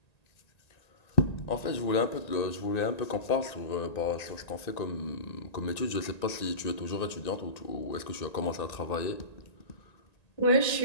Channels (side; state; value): right; late; 1.9 ms